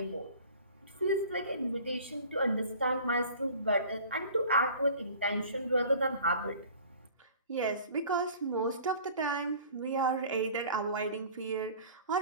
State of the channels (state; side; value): inverted; both; correlation -0.45